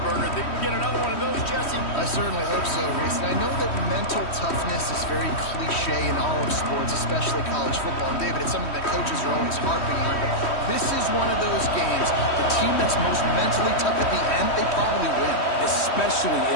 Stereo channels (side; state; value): right; late; 3.1 ms